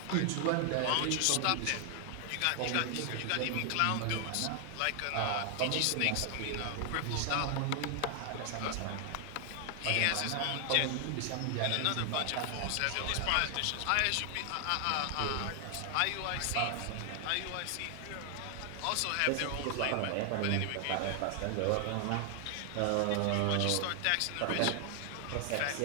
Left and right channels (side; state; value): both; different; correlation 0.00